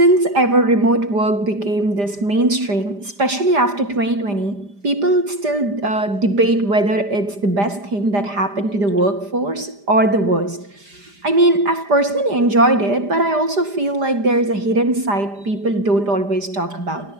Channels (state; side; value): late; left; 5.0 ms